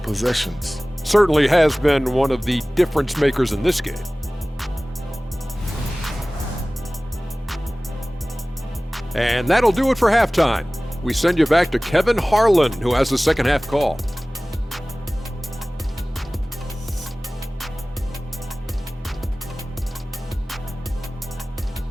possessions. Certainly has been one of the difference makers in this game. And that'll do it for halftime. We send you back to Kevin Harlan, who has the second half call.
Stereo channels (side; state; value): both; normal; correlation 0.98